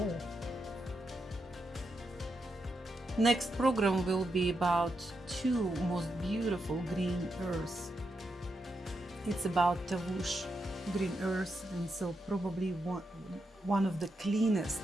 Next program will be about two most beautiful green earths. It's about Tavush green earth, and so probably one of the cleanest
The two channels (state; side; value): normal; both; correlation 0.84